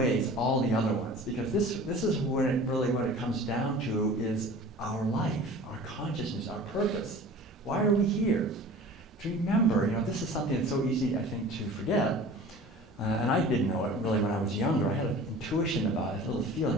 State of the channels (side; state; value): both; normal; correlation 0.42